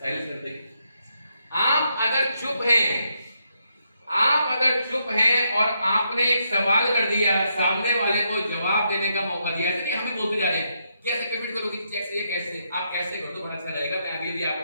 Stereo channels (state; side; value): inverted; both; correlation -0.79